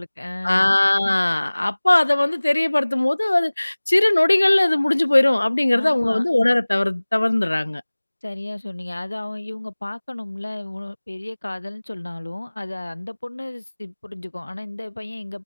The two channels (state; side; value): inverted; both; correlation -1.00